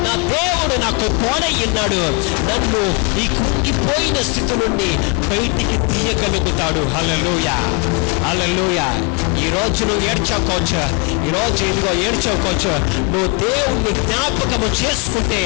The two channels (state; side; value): quieter; right; 32.5 dB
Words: నా దేవుడు నాకు తోడైనాడు. నన్ను ఈ కుంగిపోయిన స్థితి నుండి బయటికి తీయగలుగుతాడు. హల్లెలూయా, హల్లెలూయా. ఈ రోజు నువ్వు ఏడ్చకోవచ్చు, ఈ రోజు ఇదిగో ఏడ్చకోవచ్చు. నువ్వు దేవుణ్ణి జ్ఞాపకము చేసుకుంటే